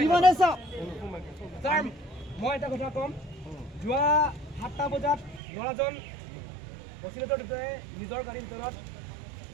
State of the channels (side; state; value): left; drops out; at 5.4 s